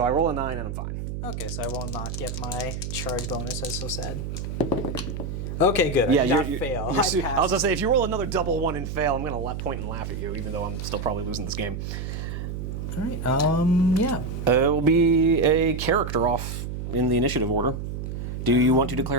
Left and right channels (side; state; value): right; noise; hum, 5 dB below the sound